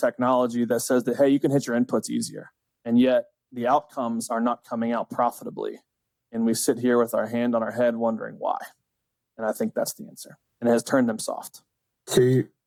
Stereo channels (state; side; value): identical; both; correlation 1.00